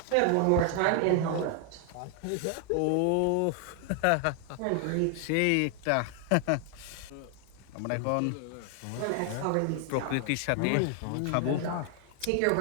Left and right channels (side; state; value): both; different; correlation 0.00